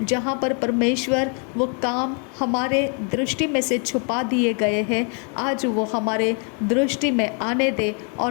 जहाँ पर परमेश्वर वो काम हमारे दृष्टि में से छुपा दिए गए हैं, आज वो हमारे दृष्टि में आने दे, और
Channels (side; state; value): right; quieter; 39.5 dB